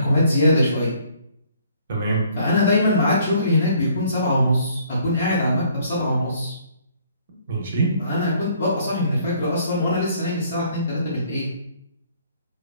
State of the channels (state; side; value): inverted; both; correlation -0.61